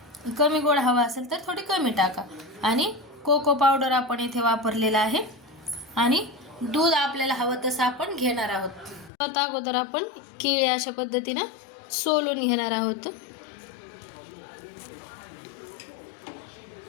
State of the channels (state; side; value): drops out; right; at 9.1 s